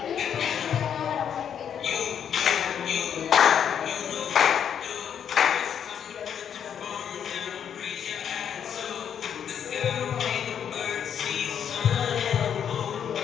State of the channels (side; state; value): right; quieter; 8.5 dB